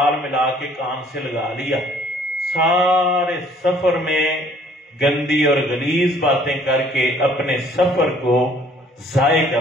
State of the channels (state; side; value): normal; both; correlation 0.58